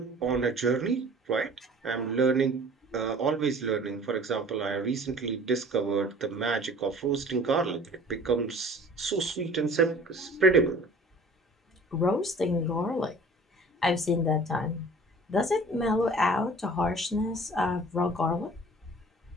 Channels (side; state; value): both; normal; correlation 0.47